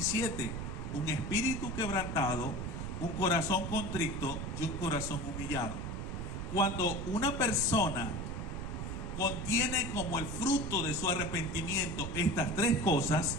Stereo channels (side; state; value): right; noise; rumble, 5 dB below the sound